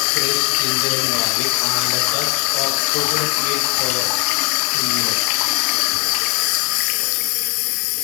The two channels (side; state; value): right; quieter; 32.4 dB